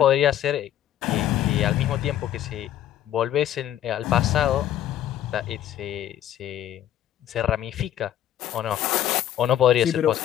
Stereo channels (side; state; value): right; quieter; 11.7 dB